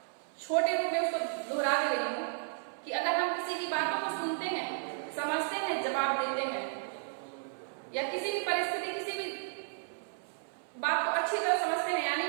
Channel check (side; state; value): left; silent; 56 dB below the other